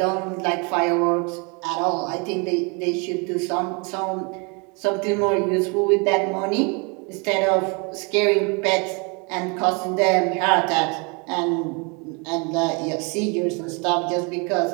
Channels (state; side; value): quieter; left; 32.5 dB